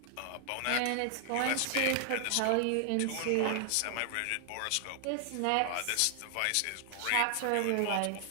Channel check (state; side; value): different; both; correlation 0.00